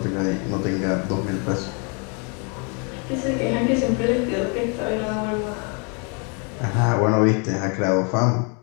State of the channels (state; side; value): quieter; right; 35.8 dB